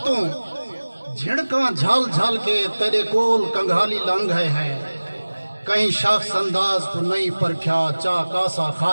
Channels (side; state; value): both; inverted; correlation -1.00